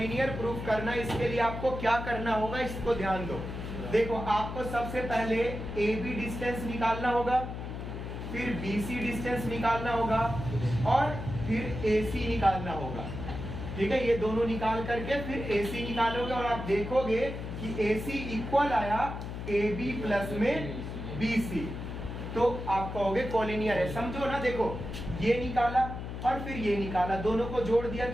प्रूफ करना है, इसके लिए आपको क्या करना होगा, इसको ध्यान दो। देखो आपको सबसे पहले AB डिस्टेंस निकालना होगा, फिर BC डिस्टेंस निकालना होगा, और फिर AC निकालना होगा। ठीक है, ये दोनों निकाल करके फिर AC निकालोगे, और आप देखोगे कि AC इक्वल आया AB प्लस में BC, तो आप कहोगे कॉलिनियर है। समझो ना, देखो ये निकाला और फिर ये निकाला, दोनों को जोड़ दिया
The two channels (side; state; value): left; noise; hum, 7 dB below the sound